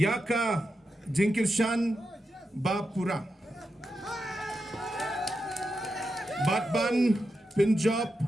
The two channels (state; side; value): normal; both; correlation 0.88